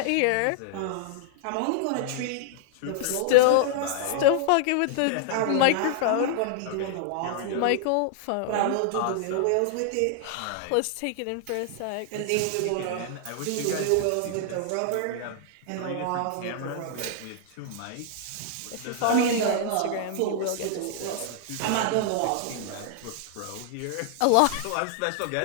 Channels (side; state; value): both; different; correlation -0.01